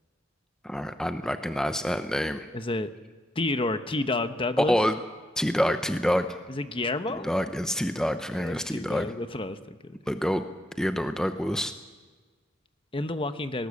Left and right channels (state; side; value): normal; both; correlation 0.80